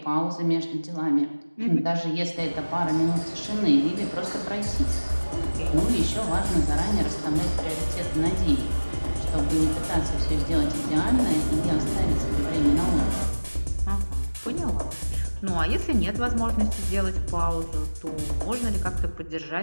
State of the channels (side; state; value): both; inverted; correlation -1.00